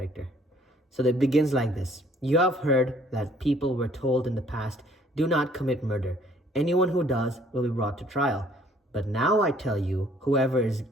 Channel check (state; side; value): normal; both; correlation 0.59